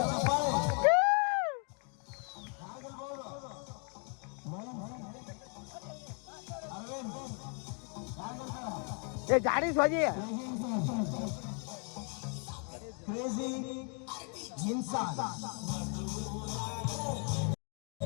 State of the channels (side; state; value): right; quieter; 39.8 dB